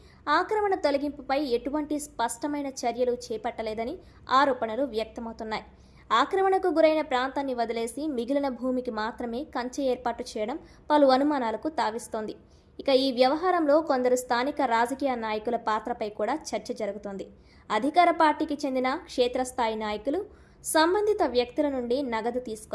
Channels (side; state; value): both; identical; correlation 1.00